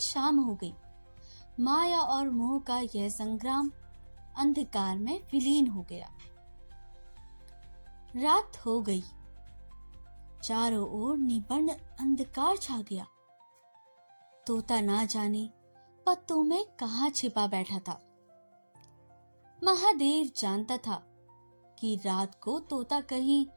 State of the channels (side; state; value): both; inverted; correlation -1.00